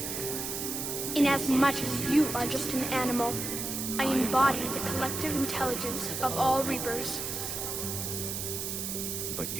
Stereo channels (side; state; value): right; noise; hiss, 4 dB below the sound